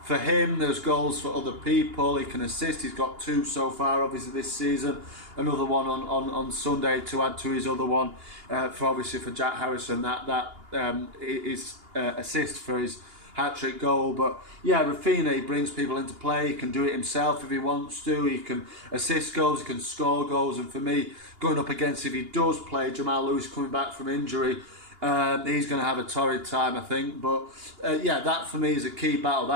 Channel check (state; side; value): late; left; 2.8 ms